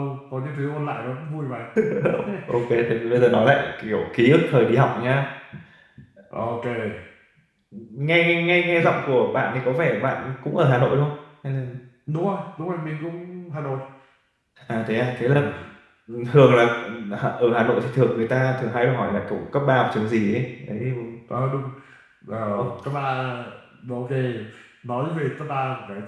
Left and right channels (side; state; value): both; identical; correlation 1.00